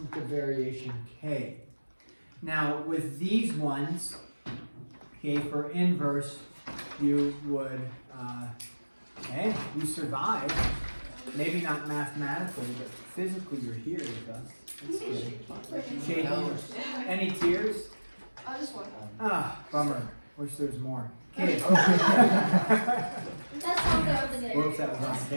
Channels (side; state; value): both; inverted; correlation -1.00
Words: of variation k. Now, with these ones, okay, for inverse, you would, okay, you survived. Maybe not mathematically, but physically you're here with us. That's good. Shaking. Any tears? Just one. Ah, bummer. Wish there was more. Okay. That's all there was. Whoops, that was on